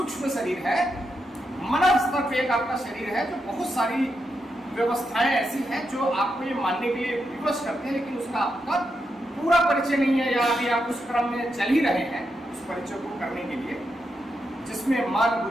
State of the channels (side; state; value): both; normal; correlation 0.85